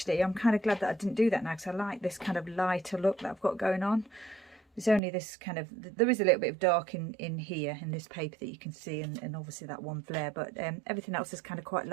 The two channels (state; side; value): drops out; left; at 5.0 s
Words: I'm kind of glad that I didn't do that now, because I like this kind of lighter look that I've got going on. There's only this kind of, there is a little bit of dark in here in this paper that you can see, and obviously that one flare, but everything else is kind of quite